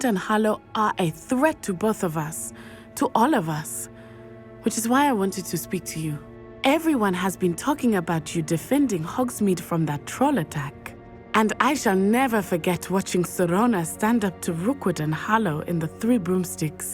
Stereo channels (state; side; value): identical; both; correlation 1.00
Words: and Harlow are a threat to both of us, to all of us. Which is why I wanted to speak to you. Everyone has been talking about you defending Hogsmeade from that troll attack. And I shall never forget watching Serona stand up to Rookwood and Harlow in the Three